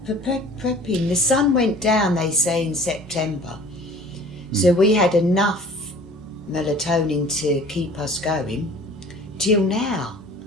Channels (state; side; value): normal; both; correlation 0.47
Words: prepping. The sun went down, they say, in September, so we had enough melatonin to keep us going till now.